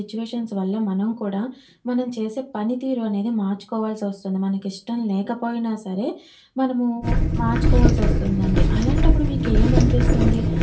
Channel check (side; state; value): both; identical; correlation 1.00